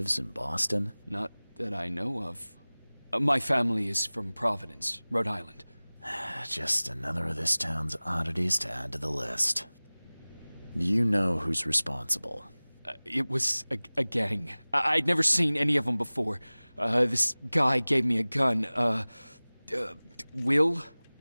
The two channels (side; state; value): both; inverted; correlation -1.00